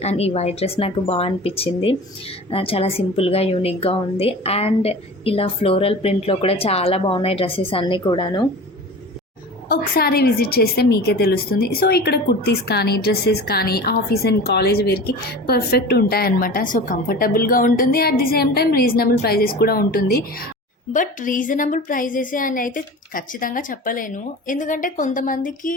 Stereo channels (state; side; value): normal; both; correlation 0.36